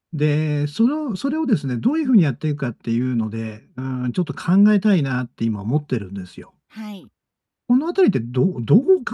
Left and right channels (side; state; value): both; identical; correlation 1.00